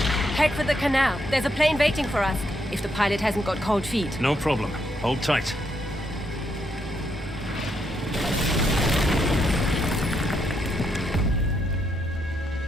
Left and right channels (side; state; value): both; normal; correlation 0.77